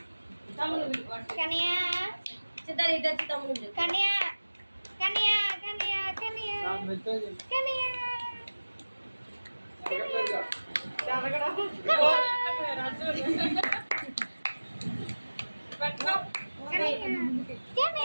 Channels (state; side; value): inverted; both; correlation -1.00